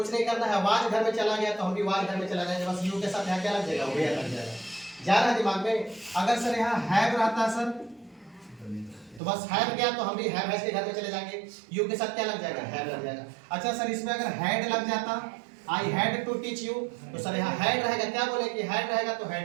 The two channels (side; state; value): left; drops out; at 9.2 s